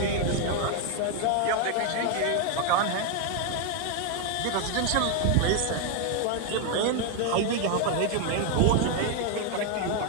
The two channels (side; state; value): both; different; correlation 0.01